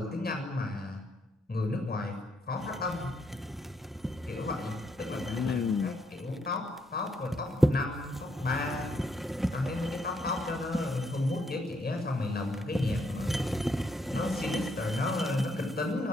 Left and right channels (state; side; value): normal; both; correlation 0.75